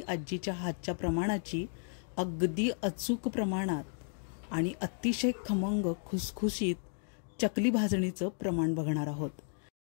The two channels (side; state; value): right; silent; 55 dB below the other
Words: आजीच्या हातच्या प्रमाणाची अगदी अचूक प्रमाणात आणि अतिशय खमंग खुसखुशीत चकली भाजणीचं प्रमाण बघणार आहोत.